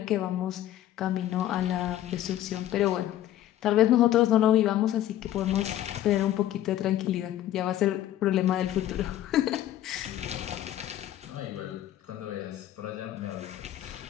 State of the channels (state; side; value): quieter; right; 12.8 dB